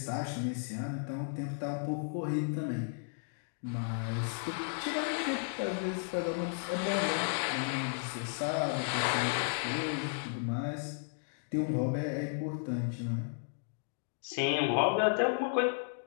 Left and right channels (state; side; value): silent; right; digital silence